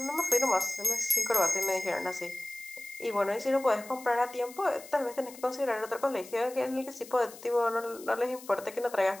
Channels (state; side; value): noise; left; hiss, 17 dB below the sound